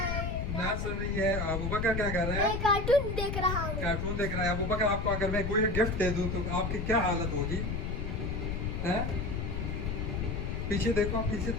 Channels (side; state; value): left; noise; rumble, 2 dB below the sound